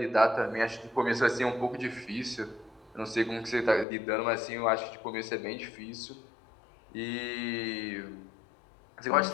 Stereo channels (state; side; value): drops out; right; at 3.9 s